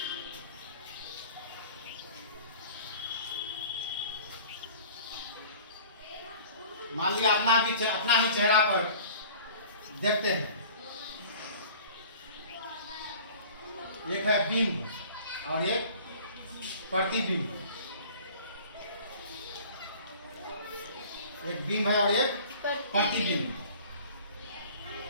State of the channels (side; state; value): both; inverted; correlation -0.46